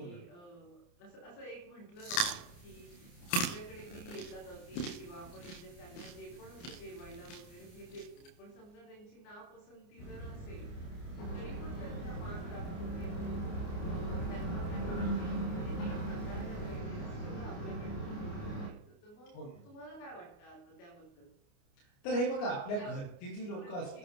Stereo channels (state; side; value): late; right; 29 ms